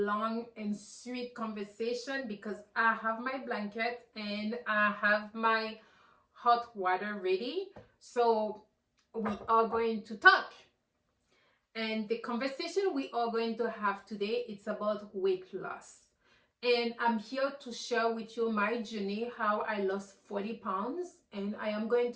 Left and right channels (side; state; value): both; identical; correlation 1.00